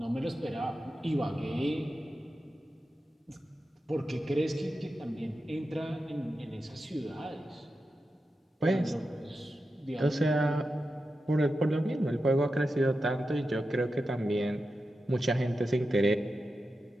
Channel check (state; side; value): normal; both; correlation 0.90